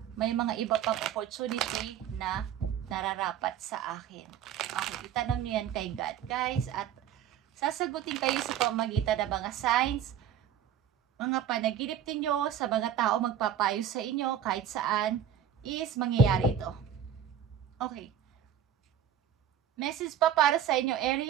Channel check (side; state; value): left; quieter; 9.3 dB